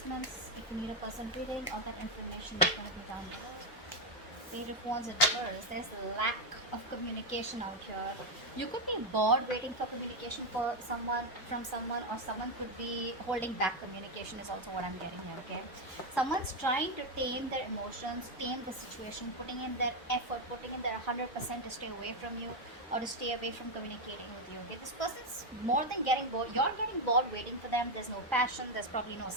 If you need a person reading, all that information is going to be down below. Page of Wands in reverse. There's lack of communication out here. You could be bored waiting for communication for someone from someone, or someone could be holding back communication is also what I'm getting here, okay? Someone's trying to tame their emotions, tame the situation, putting in their effort, putting in their 100% to stay away from you or to stay away from communicating with you, okay? This person's more than getting bored. You're getting bored waiting for them. There's no passion. There's probably no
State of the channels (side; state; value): both; normal; correlation 0.05